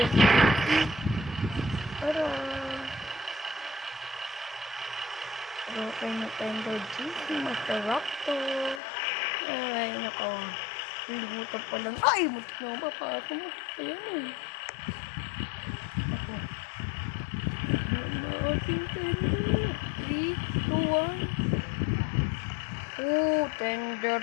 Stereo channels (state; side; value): drops out; right; at 8.8 s